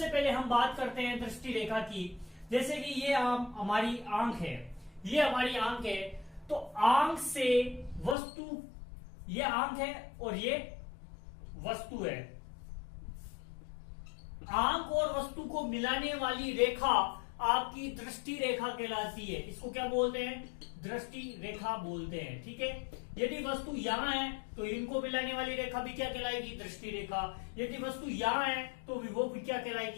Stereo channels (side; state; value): right; drops out; at 8.2 s